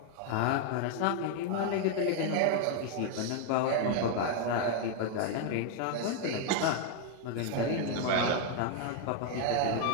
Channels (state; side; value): different; both; correlation 0.00